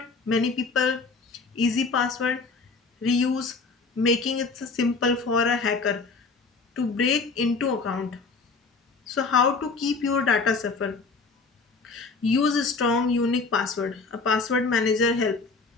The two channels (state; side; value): quieter; right; 4.3 dB